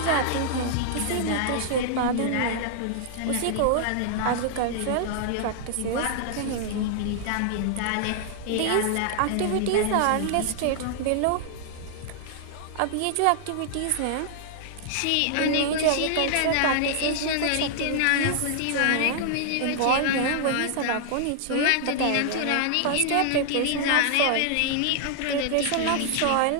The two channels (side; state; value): both; different; correlation -0.01